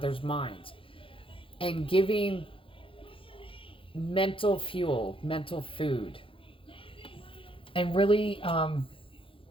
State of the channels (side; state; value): right; late; 0.26 ms